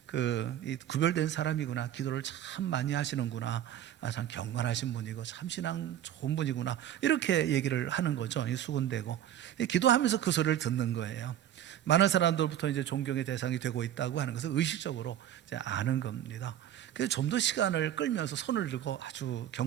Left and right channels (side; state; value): left; quieter; 11.2 dB